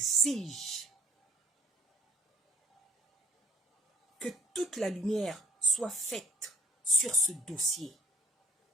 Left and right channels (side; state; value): both; normal; correlation 0.54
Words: que toute la lumière soit faite sur ce dossier.